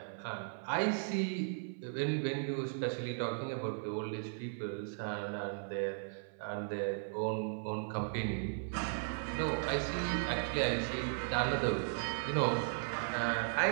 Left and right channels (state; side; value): silent; left; 53 dB below the other